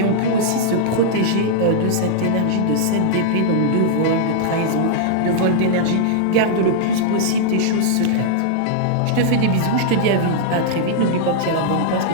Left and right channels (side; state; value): both; different; correlation -0.01